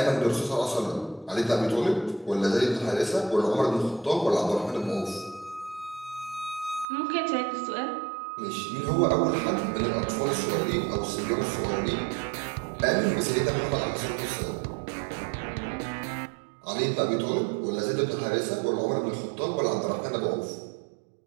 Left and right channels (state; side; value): drops out; left; at 6.9 s